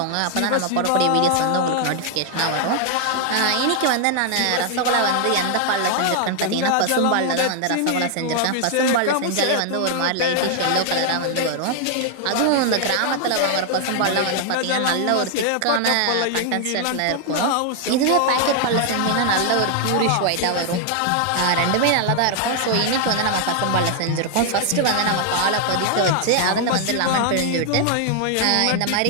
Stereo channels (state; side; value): different; both; correlation 0.00